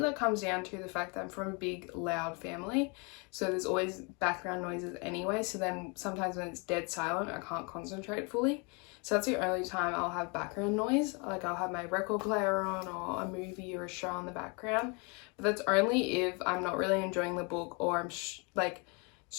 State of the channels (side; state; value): right; quieter; 32.2 dB